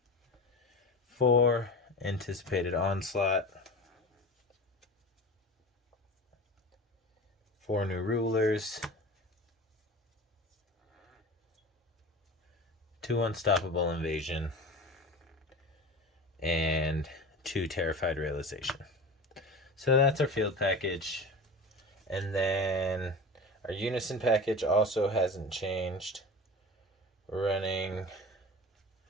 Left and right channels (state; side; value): normal; both; correlation 0.32